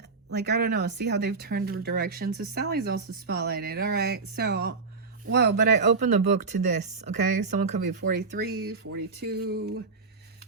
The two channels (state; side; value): quieter; left; 4.4 dB